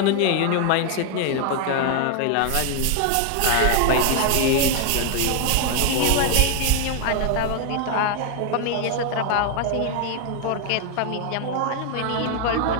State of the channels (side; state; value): both; different; correlation 0.00